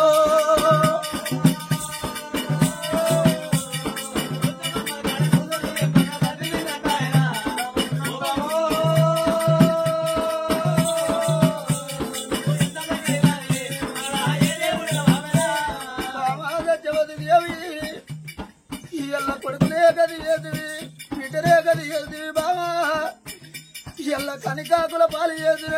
కొడుకునే గది ఏదివి బిడ్డనే గది ఏదివి బావా. ఎల్ల కని కాకుల పాలు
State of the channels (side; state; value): both; identical; correlation 1.00